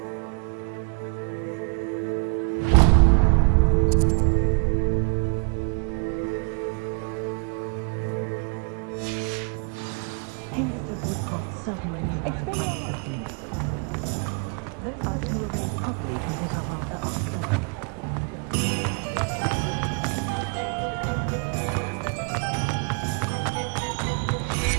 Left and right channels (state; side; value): quieter; left; 36.3 dB